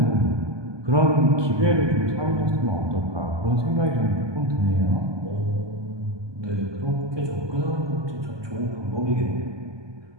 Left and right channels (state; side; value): late; left; 1.2 ms